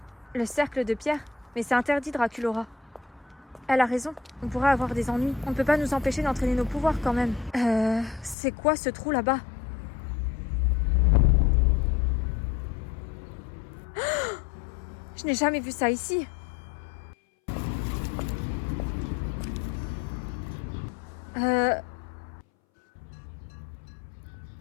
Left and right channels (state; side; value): drops out; right; at 8.3 s